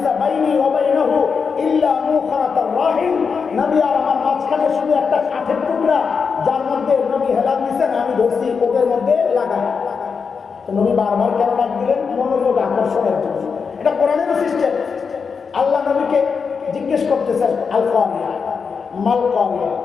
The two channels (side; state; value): right; quieter; 5.6 dB